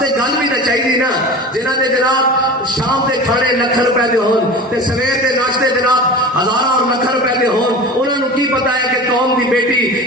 گل بھی تو چاہیے نا. جنہوں نے جناب شام کے کھانے لکھ روپے دے ہون تے سویر کے ناشتے جناب ہزار اور لکھ روپے دے ہون, انہوں نے کی پتا ہے کہ قوم کی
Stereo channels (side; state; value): both; normal; correlation 0.33